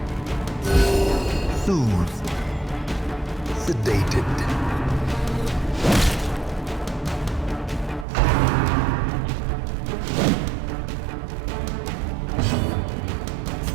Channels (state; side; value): drops out; left; at 8.1 s